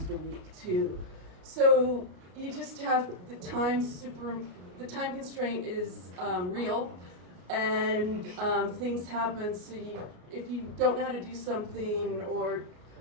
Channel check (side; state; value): left; late; 33 ms